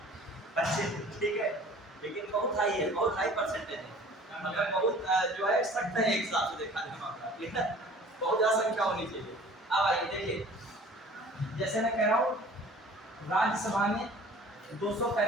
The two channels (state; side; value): normal; both; correlation 0.48